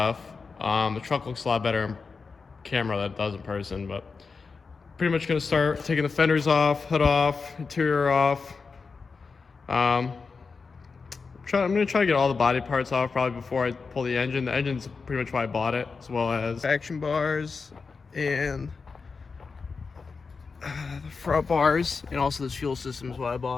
The truck looks a lot better in camera than it does in person, but pretty much going to start taking the fenders off, hood off, interior off. I'm going to try to get all the body parts off probably before I pull the engine. The engine's pretty much why I bought it, as well as action bars and the front bars, and also this fuel system is why I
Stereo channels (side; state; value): right; quieter; 4.8 dB